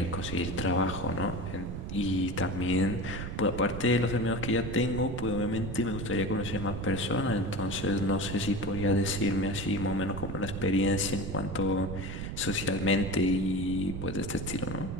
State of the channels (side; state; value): right; noise; rumble, 6 dB below the sound